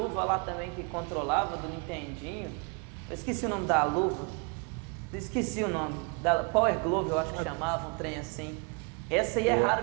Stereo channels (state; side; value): quieter; left; 34.3 dB